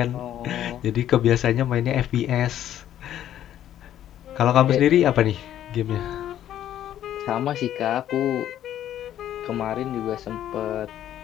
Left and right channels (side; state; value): right; quieter; 11.5 dB